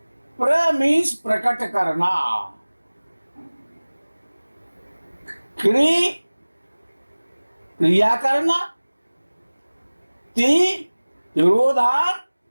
प्र मीन्स प्रकट करना, क्रिया करना, ति तिरोधान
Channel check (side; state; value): both; inverted; correlation -1.00